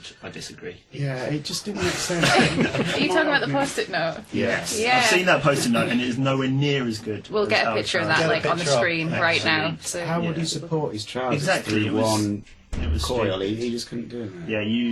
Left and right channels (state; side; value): identical; both; correlation 1.00